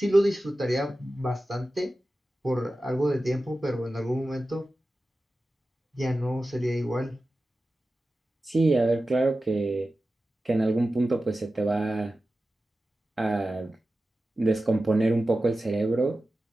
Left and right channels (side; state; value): both; normal; correlation 0.94